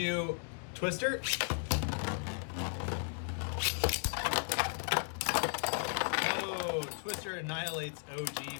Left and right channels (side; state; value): right; silent; 54 dB below the other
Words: do Twister. Oh, Twister annihilates